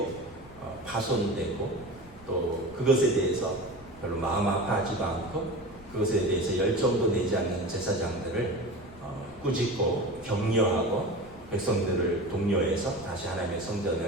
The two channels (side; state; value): left; noise; rumble, 23 dB below the sound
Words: 파손되고 또 그것에 대해서 별로 마음 아파하지도 않고 그것에 대해서 열정도 내지 않는 제사장들을 꾸짖고 격려하고 백성들을 독려해서 다시 하나님의